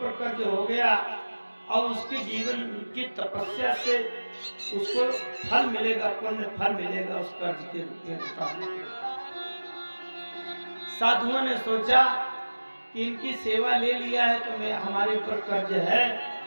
कर्ज हो गया, और उसके जीवन की तपस्या से उसको फल मिलेगा, पुण्य फल मिलेगा उस कर्ज के रूप में। साधुओं ने सोचा कि इनकी सेवा ले लिया है तो मैं हमारे ऊपर कर्ज है।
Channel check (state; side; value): inverted; both; correlation -1.00